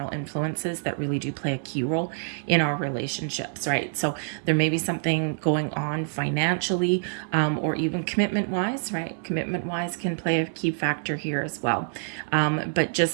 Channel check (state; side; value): silent; left; digital silence